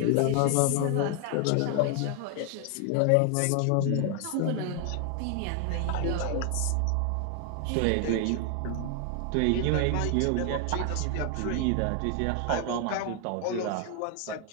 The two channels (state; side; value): different; both; correlation 0.00